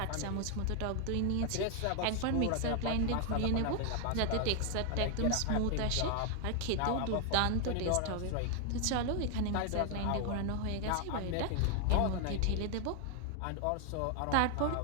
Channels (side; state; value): both; different; correlation 0.00